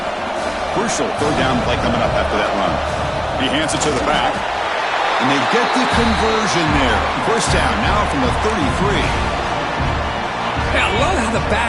Crucial third down play coming up after that run. He hands it to the back, and they get the conversion there. First down now from the 33. Yeah, I love how the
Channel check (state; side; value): identical; both; correlation 1.00